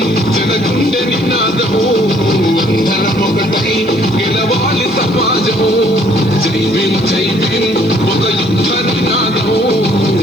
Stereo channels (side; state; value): left; noise; hiss, 28 dB below the sound